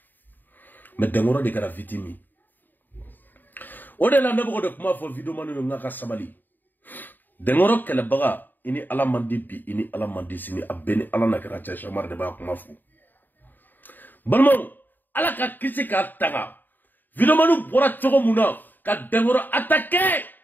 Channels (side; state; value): right; late; 0.090 ms